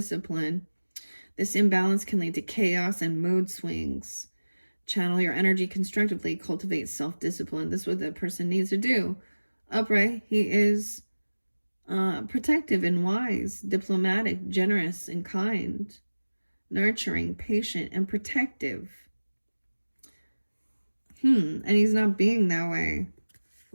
This imbalance can lead to chaos and mood swings. Channel your energy constructively. Cultivate self-discipline. This is what that person needs to do. Upright, he is protective and wise, diplomatic, generous and kind, nurturing, patient, and protective. And he's not being that way.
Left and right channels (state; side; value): inverted; both; correlation -1.00